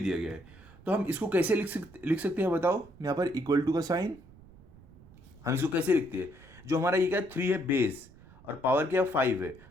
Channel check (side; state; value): right; noise; rumble, 23 dB below the sound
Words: गया है। तो हम इसको कैसे लिख सकते हैं बताओ। यहाँ पर इक्वल टू का साइन, हम इसको कैसे लिखते हैं। जो हमारा ये क्या 3 है बेस, और पावर क्या 5 है,